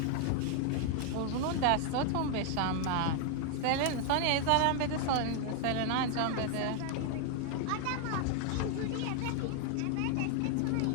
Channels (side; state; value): both; different; correlation 0.00